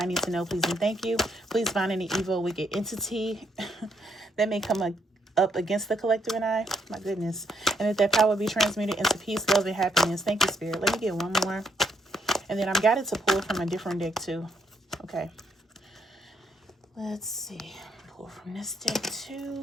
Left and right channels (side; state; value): both; normal; correlation 0.74